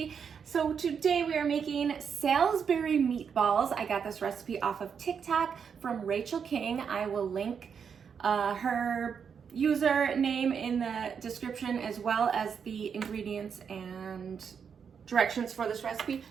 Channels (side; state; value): left; quieter; 6.8 dB